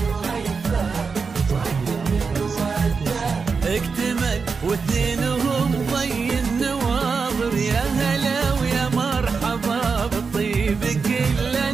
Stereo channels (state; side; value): quieter; left; 5.1 dB